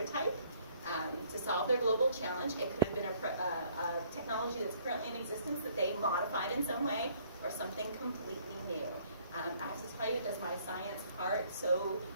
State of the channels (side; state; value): both; inverted; correlation -0.61